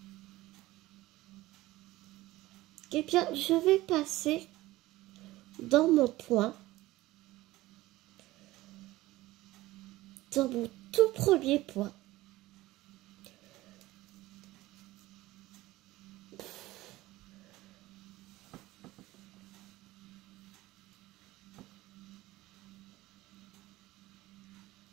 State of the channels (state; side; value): quieter; left; 17.8 dB